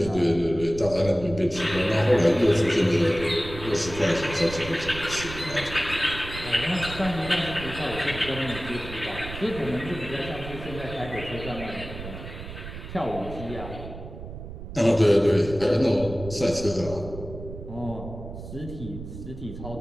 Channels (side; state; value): right; noise; rumble, 11 dB below the sound